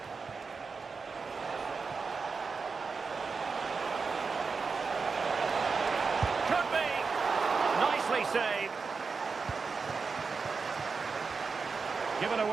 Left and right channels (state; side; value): quieter; left; 4.8 dB